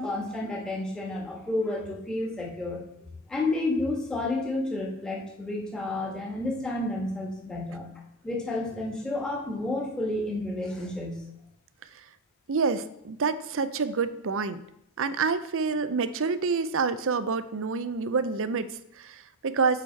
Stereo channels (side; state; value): both; normal; correlation 0.19